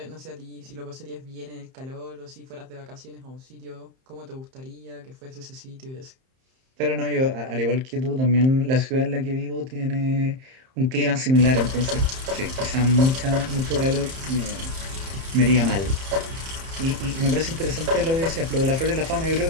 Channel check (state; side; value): late; left; 31 ms